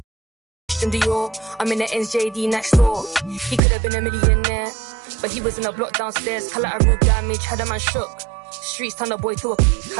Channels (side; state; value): left; drops out; at 3.6 s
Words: Dior. I'm in the NJD next door. He could have been a millionaire, but he was in a block downstairs. Collateral damage, had a man shook. Streets turn a boy to a